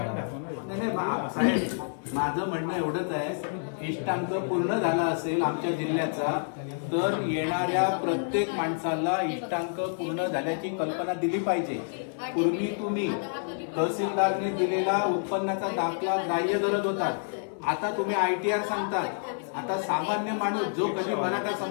नाही साहेब, माझं म्हणणं एवढंच आहे, इष्टांक पूर्ण झाला असेल आमच्या जिल्ह्याचा तर येणाऱ्या प्रत्येक माणसाला इष्टांक पूर्ण झाल्याची कल्पना दिली पाहिजे. पूर्वी तुम्ही तहसीलदारने दिलेला उत्पन्नाचा दाखला ग्राह्य धरत होतात, आता तुम्ही ITR सांगतात. आता सामान्य माणूस जो कधी मराठा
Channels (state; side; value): silent; right; 59 dB below the other